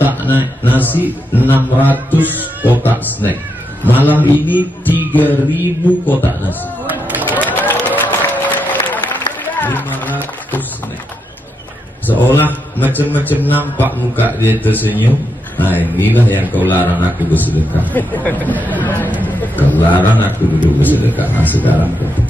nasi, 600 kotak snack, malam ini 3000 kotak nasi, 500 snack. Seolah macam-macam nampak muka dia tersenyum. Nah, inilah yang kau larang aku bersedekah. Kau larang aku dulu bersedekah. Nah, sekarang kau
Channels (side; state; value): both; normal; correlation 0.82